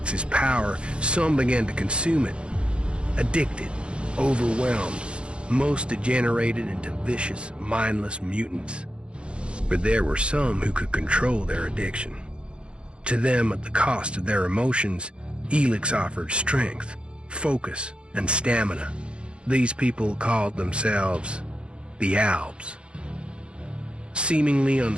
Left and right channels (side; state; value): left; late; 0.056 ms